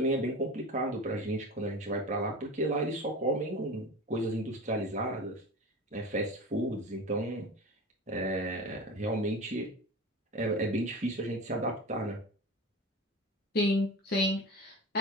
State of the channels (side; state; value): both; normal; correlation 0.30